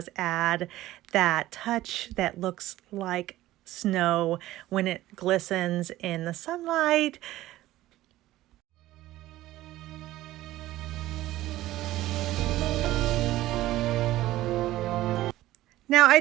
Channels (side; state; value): left; quieter; 15.7 dB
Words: add that touch that looks like snow when it glistens in the sunlight. Now, I